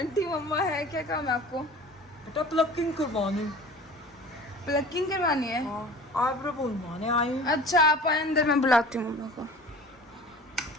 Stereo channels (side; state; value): both; normal; correlation 0.41